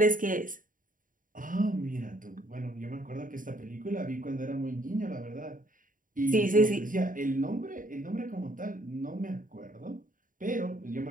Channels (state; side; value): late; left; 0.39 ms